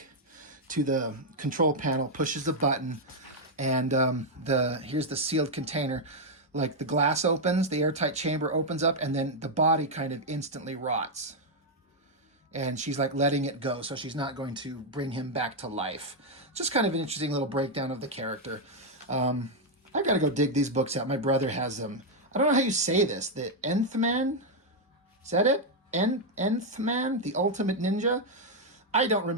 to the control panel, pushes the button, and here's the sealed container. Like the glass opens, the airtight chamber opens up, and then the body kind of instantly rots. And she's like letting it go, so she's not going to bring him back to life. Just kind of an interesting little breakdown of the character. I got to go dig these books out. My brother has them. I don't know how you say this. The Nth Man? Is that it? Nth Man? The Ultimate Ninja? I don't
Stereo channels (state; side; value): normal; both; correlation 0.00